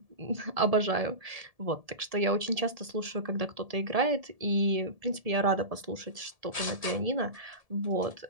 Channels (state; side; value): late; left; 1.7 ms